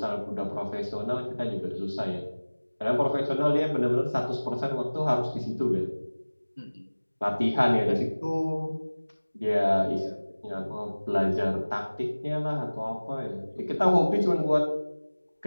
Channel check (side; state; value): both; inverted; correlation -1.00